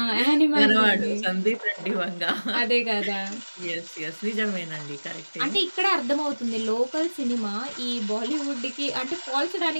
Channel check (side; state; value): both; inverted; correlation -1.00